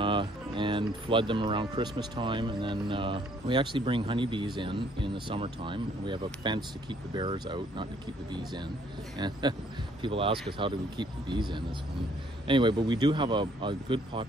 and flood them around Christmas time. And then we actually bring honeybees in the summertime. We have a fence to keep the bears out, not to keep the bees in. And people ask us, how do we keep the bees in? This one. Anyway, but we do have a good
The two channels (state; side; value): normal; both; correlation 0.63